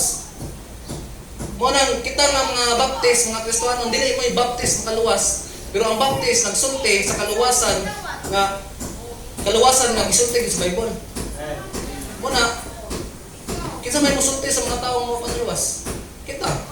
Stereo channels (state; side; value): identical; both; correlation 1.00